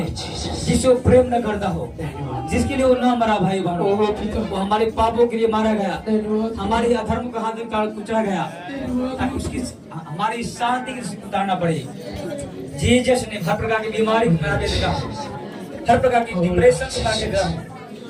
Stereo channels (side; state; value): both; identical; correlation 1.00